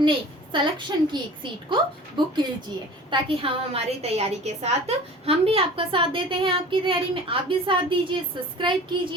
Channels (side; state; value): both; normal; correlation 0.42